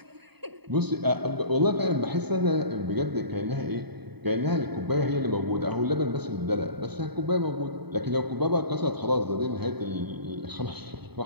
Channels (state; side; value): late; left; 0.98 ms